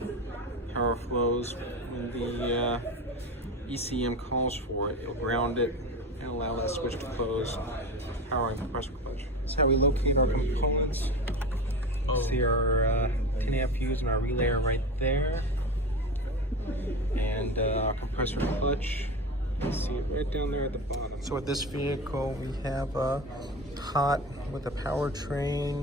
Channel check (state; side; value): normal; both; correlation 0.28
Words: Power flows when the ECM calls for it. It'll ground it and allow that switch to close, powering the compressor clutch. That's how we locate our components. See our 10 amp fuse and our relay are right there. And our compressor clutch, see it right down there at the bottom. So with this vehicle, we have a cot with a